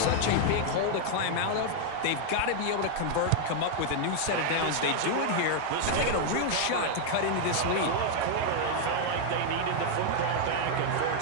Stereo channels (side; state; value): both; different; correlation 0.00